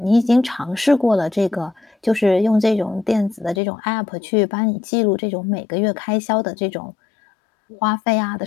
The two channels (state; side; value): drops out; right; at 3.6 s